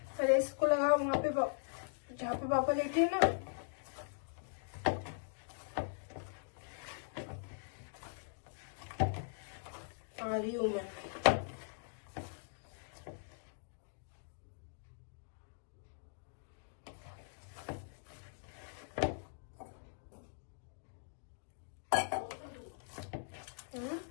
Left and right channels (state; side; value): silent; right; digital silence